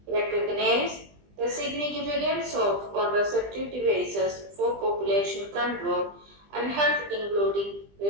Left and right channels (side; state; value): left; late; 20 ms